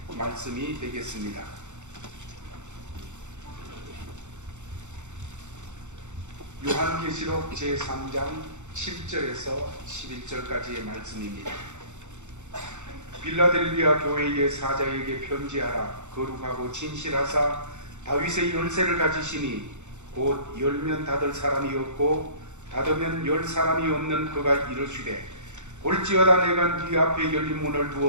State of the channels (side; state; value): left; late; 0.84 ms